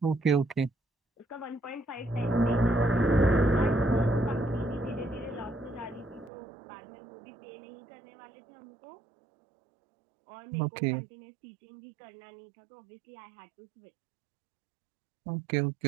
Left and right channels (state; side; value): drops out; left; at 6.3 s